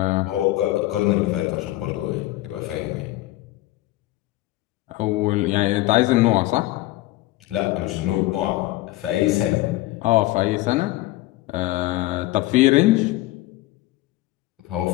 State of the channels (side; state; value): right; quieter; 17.9 dB